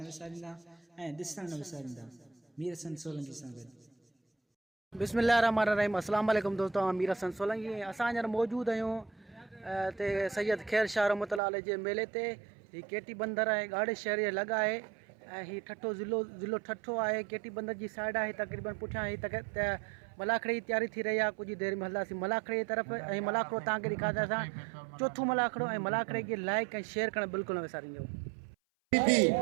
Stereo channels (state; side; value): drops out; left; at 11.4 s